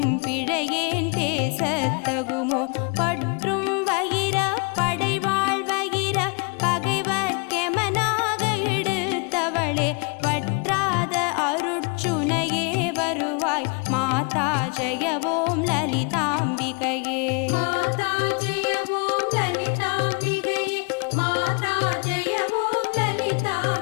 பிள்ளையேன் பேசத்தகுமோ பற்றும் வயிர படைவாழ் வயிர பகைவர்க்கெமனாக எடுத்தவளே வற்றாத அருட்சுனையே வருவாய் மாதா ஜெய ஓம் லலிதாம்பிகையே மாதா ஜெய ஓம் லலிதாம்பிகையே மாதா ஜெய ஓம்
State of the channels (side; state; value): right; quieter; 33.5 dB